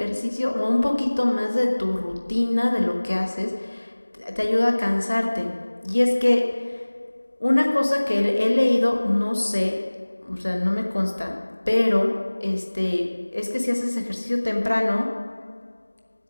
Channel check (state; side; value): inverted; both; correlation -1.00